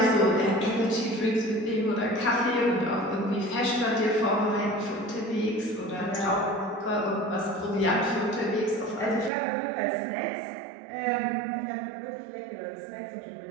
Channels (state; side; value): drops out; left; at 9.3 s